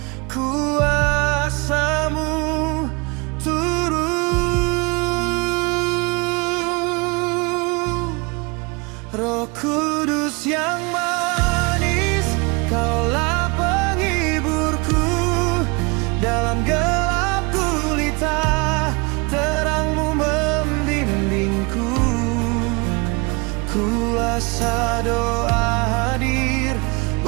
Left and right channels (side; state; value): left; quieter; 28.7 dB